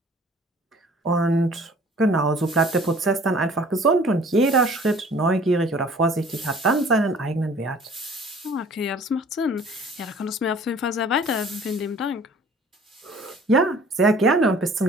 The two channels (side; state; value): both; normal; correlation 0.51